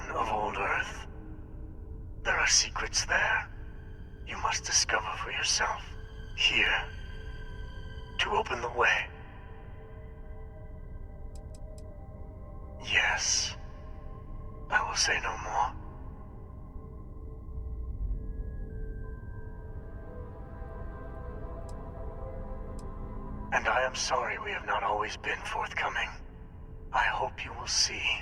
of old Earth. There are secrets there you must discover for yourself. Here, to open the way. Yes, I will say no more. And I am sorry we have not always been forthcoming. I hope you will see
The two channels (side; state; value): both; identical; correlation 1.00